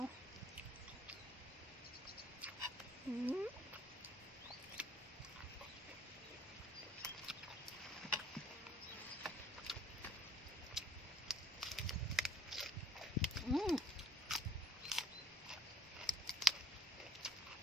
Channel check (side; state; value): both; normal; correlation 0.59